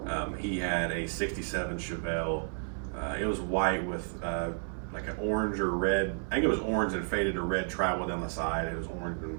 He had a 67 Chevelle. It was white with like an orange or red, I think it was orange and faded to red travel down the side. It was orange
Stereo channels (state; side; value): silent; left; 57 dB below the other